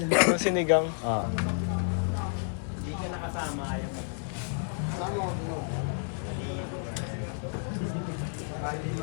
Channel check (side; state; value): right; silent; 58 dB below the other